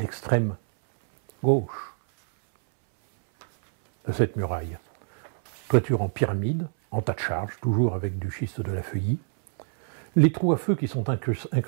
gauche de cette muraille. Toiture en pyramide, en tas de charge, toujours avec du schiste de la feuillie. Les trous à feu qui sont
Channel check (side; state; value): left; silent; 61 dB below the other